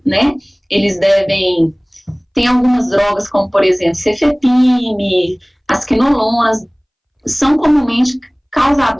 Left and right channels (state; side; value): identical; both; correlation 1.00